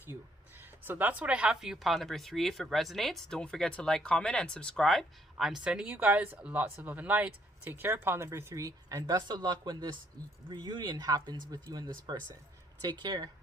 you. So that's what I have for you, pile number 3. If it resonates, don't forget to like, comment, and subscribe. I'm sending you guys lots of love and light. Take care, pile number 3, and best of luck when this reunion happens with you and this person. Take care.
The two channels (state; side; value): normal; both; correlation 0.69